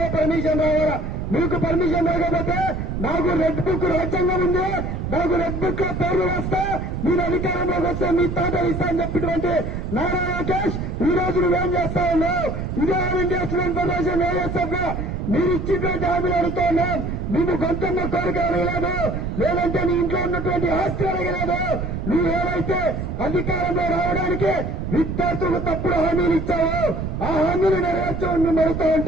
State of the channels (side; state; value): right; noise; rumble, 4 dB below the sound